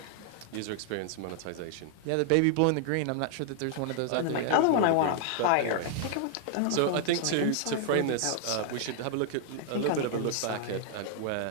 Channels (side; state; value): both; different; correlation -0.01